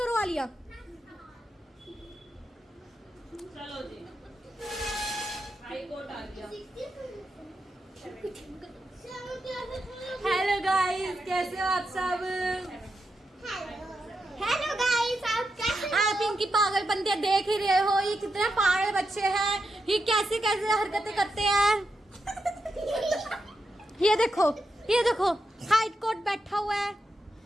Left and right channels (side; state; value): both; normal; correlation 0.86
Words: आलिया। चलो जी, हाई कोर्ट आ गया। हेलो गाइस, कैसे हो आप सब? हेलो गाइस, आप कैसे आप इनकी पागल बंदियां देख ही रहे हो, ये कितने पागल बच्चे हैं, ये कैसे कैसे हरकतें करते हैं। ये देखो हाइट कोट बैठा हुआ है।